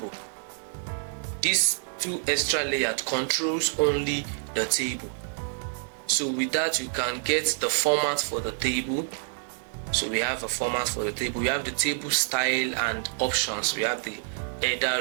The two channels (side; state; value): left; silent; digital silence